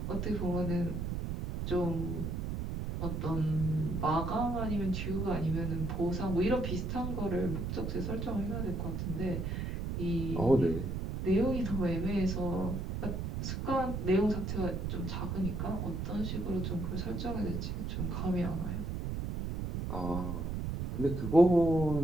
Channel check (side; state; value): right; noise; rumble, 3 dB below the sound